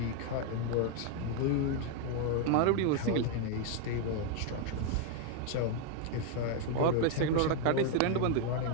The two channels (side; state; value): both; different; correlation 0.01